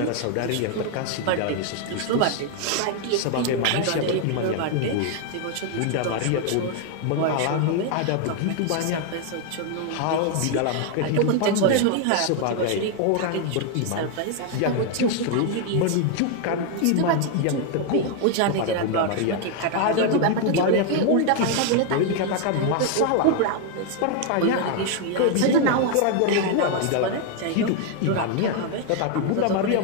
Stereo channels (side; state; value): both; different; correlation 0.01